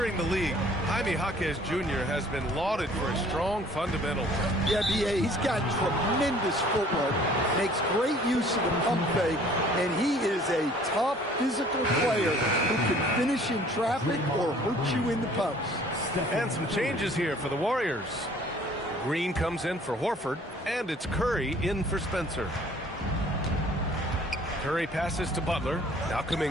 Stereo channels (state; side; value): normal; both; correlation 0.54